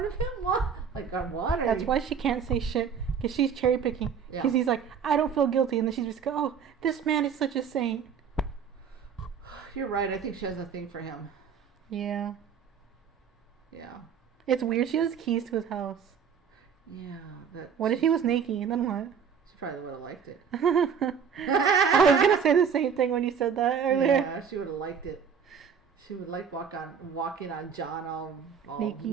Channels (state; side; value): quieter; left; 7.0 dB